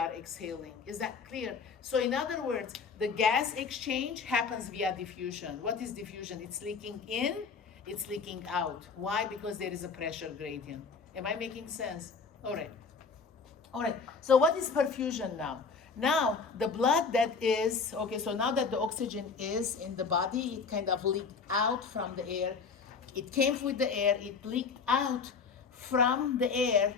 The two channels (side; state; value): right; quieter; 5.2 dB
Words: exhaling. Is that clear? So in other words, the gas exchange happens via diffusion. What is diffusion? It's leaking in, it's leaking out. Why? Because there is a pressure gradient. Am I making sense? All right. All right, so what is perfusion now? Now, the blood that is, so now that the oxygen is in the body, it kind of leaked out from the air. It came with the air, it leaked out from the air